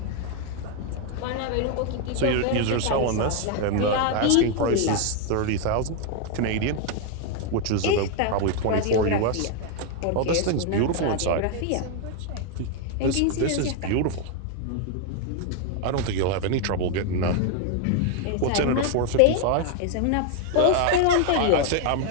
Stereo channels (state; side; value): different; both; correlation 0.00